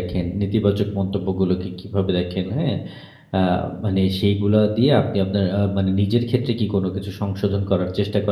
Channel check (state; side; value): identical; both; correlation 1.00